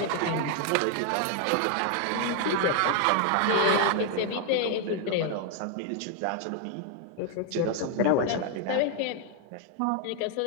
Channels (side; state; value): both; different; correlation 0.00